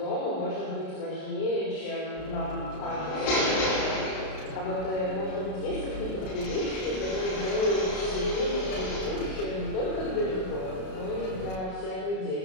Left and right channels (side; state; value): right; late; 32 ms